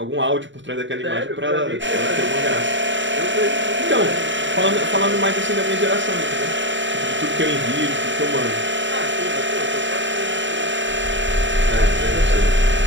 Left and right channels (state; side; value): late; left; 0.54 ms